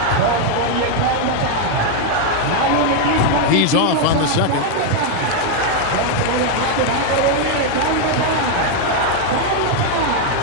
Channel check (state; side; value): different; both; correlation 0.00